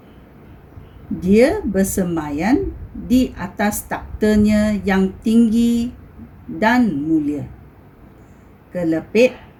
Dia bersemayan di atas taktanya yang tinggi dan mulia. Kelepek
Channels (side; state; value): both; identical; correlation 1.00